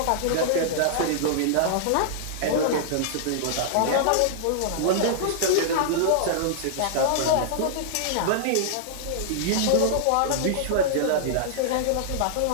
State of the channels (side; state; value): both; different; correlation -0.01